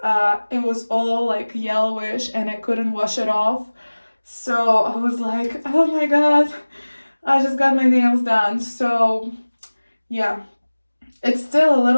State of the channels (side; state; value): both; inverted; correlation -1.00